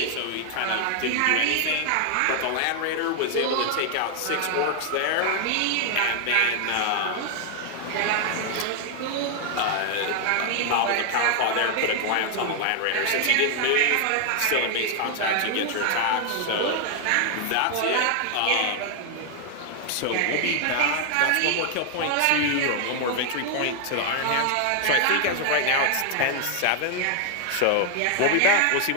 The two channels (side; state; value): both; different; correlation 0.00